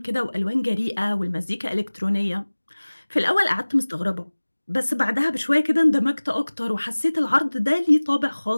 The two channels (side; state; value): both; inverted; correlation -1.00